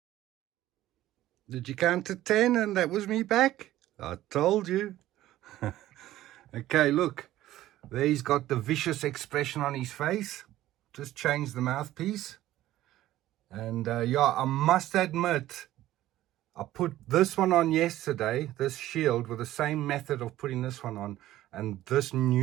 Did you count to 10 and that was me back? I told you. Okay, look. There he's got the vicious expression on his face. Just changed the mouthpiece. And yeah, I must admit, I put this one on yesterday, this shield, with the same method of putting this one on. And this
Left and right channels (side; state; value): left; quieter; 14.5 dB